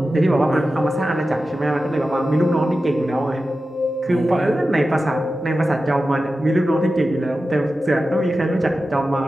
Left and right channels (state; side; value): normal; both; correlation 0.93